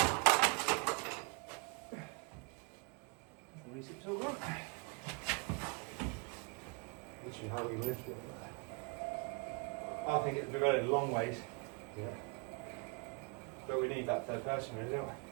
The research tool work. Literally, how we lift it. I think it'd be very long ways. Yeah. But we need that third person, really, don't we?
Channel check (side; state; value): left; quieter; 34.3 dB